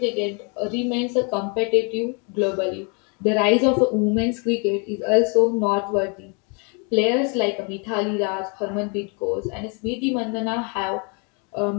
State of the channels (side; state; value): right; quieter; 35.0 dB